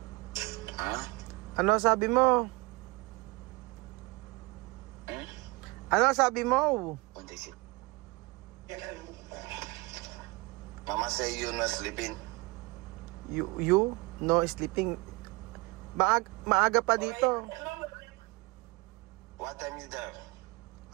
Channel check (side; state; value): left; quieter; 24.9 dB